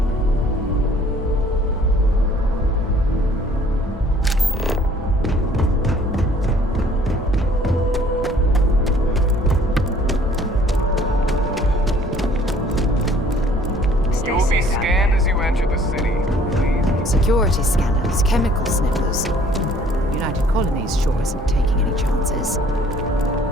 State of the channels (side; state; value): both; normal; correlation 0.56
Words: You'll be scanned as you enter the city. Security scanners, chemical sniffers. United Colonies sure isn't taking any chances.